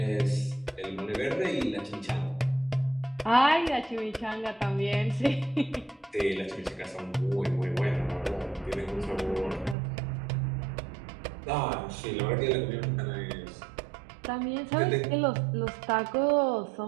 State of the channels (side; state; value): left; drops out; at 9.8 s